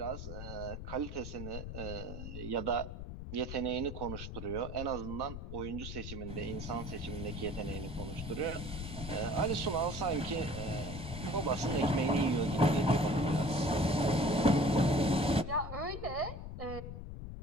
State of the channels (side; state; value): left; noise; rumble, 8 dB below the sound